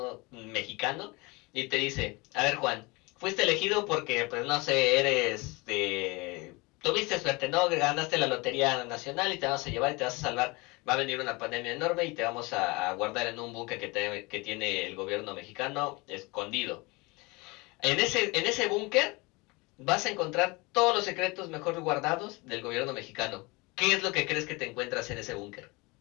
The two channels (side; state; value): right; quieter; 25.5 dB